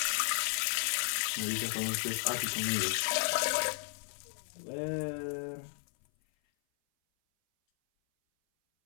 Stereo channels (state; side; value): silent; right; 55 dB below the other